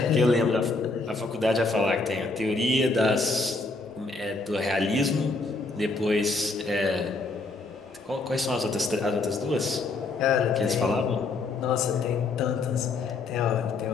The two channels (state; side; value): quieter; right; 3.6 dB